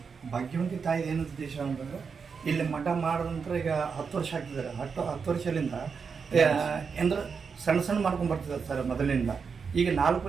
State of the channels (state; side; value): quieter; left; 5.7 dB